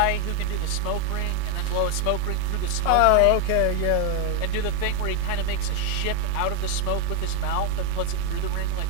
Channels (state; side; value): different; both; correlation 0.00